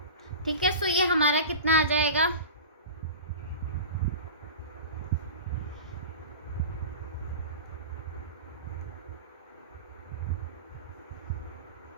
ठीक है, सो ये हमारा कितना आ जाएगा,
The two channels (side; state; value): both; inverted; correlation -0.32